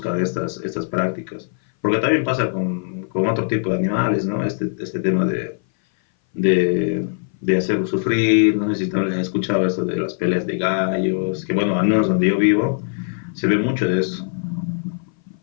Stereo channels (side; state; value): right; silent; 60 dB below the other